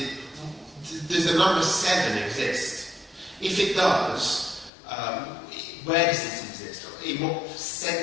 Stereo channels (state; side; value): drops out; right; at 4.7 s